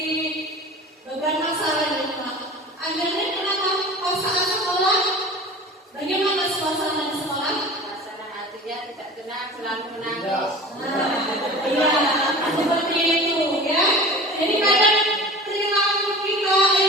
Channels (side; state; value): both; normal; correlation 0.38